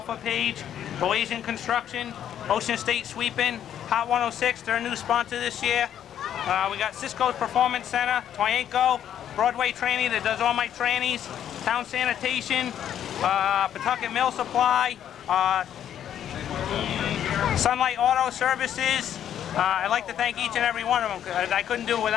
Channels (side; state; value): right; quieter; 10.1 dB